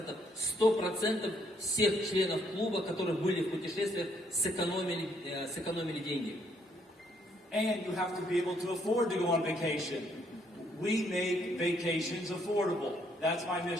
100% всех членов клуба, которые были в путешествиях, сэкономили деньги. And you have to be able to afford to go on vacation. We make vacations affordable. That's my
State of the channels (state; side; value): normal; both; correlation 0.69